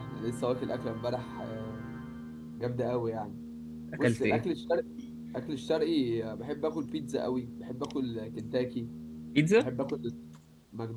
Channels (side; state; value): both; identical; correlation 1.00